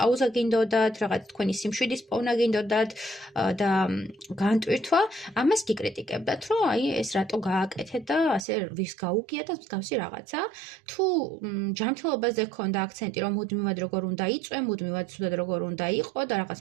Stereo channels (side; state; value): left; drops out; at 8.5 s